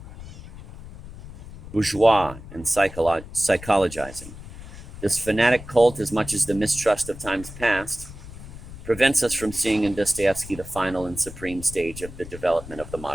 bourgeois, and psychologizing. This fanatic cult, as much as the mistrust of times past, prevents us from seeing in Dostoevsky the final and supreme stage of the development of the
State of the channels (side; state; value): left; noise; rumble, 14 dB below the sound